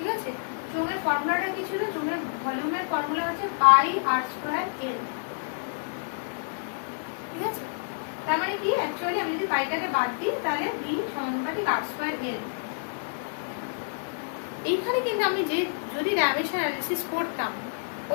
আছে? চোঙের ফর্মুলাটা কি ছিল? চোঙের ভলিউমের ফর্মুলা হচ্ছে পাই আর স্কোয়ার এল, ঠিক আছে? তার মানে কি, অ্যাকচুয়ালি আমি যদি পাইটাকে বাদ দিই তাহলে ভি সমানুপাতিক আর স্কোয়ার এল। এইখানে কিন্তু আমি যদি ডাইমেনশন অ্যানালিসিস করতাম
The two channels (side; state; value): right; silent; digital silence